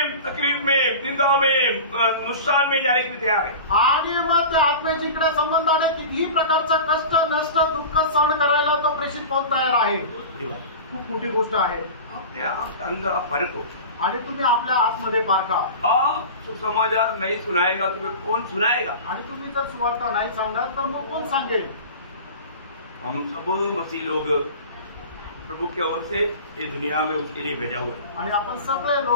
तकलीफ में, निंदा में, नुकसान में जाने के लिए तैयार है. आणि मग त्या आत्म्याच्या इकडे संबंधाने कितीही प्रकारचं कष्ट, नष्ट, दुःख सहन करायला तो प्रेषित पाऊल तयार आहे. खूप मोठी गोष्ट आहे. अपने आप के अंदर आप फर्क हो. आणि तुम्ही आपल्या आतमध्ये पारखा. आप सुसमाचार नहीं सुनाएगा तुम्हें कौन सुनाएगा? आणि तुम्ही जर सुवार्ता नाही सांगणार तर मग कोण सांगेल? हम सब मसीह लोग प्रभु की ओर से ये दुनिया में उसके लिए भेजा हुआ है. आणि आपण सगळे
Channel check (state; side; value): inverted; both; correlation -0.33